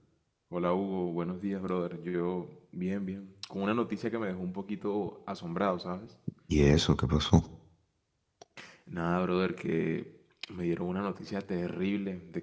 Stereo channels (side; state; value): both; identical; correlation 1.00